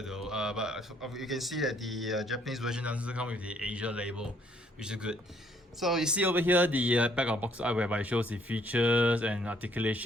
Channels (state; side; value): normal; both; correlation 0.66